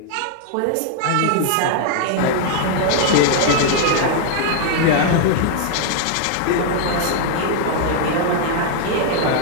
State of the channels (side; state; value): both; different; correlation 0.00